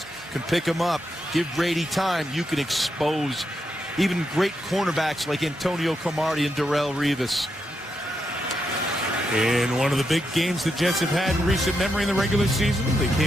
can pick them up, give Brady time, you can expose even great cornerbacks like Antonio Cromartie and Darrelle Revis. In one of the big games the Jets have had in recent memory in the regular season, they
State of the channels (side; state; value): both; normal; correlation 0.83